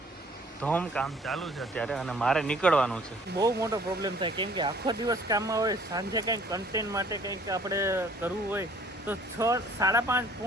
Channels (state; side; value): normal; both; correlation 0.56